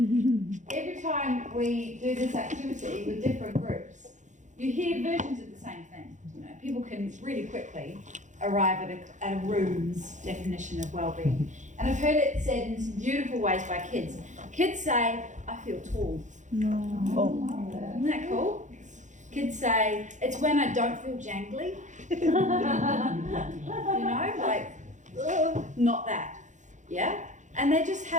Every time we do this activity with different groups, you hear versions of the same thing. You know, people can really quickly arrive at a room's definition of well-being. And I've heard it said in some beautiful ways by kids. Kids say, I feel tall. Isn't that cool? Kids say, it's when I don't feel jangly. You know, like, ugh, not that. Yeah? And they just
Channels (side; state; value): left; late; 0.35 ms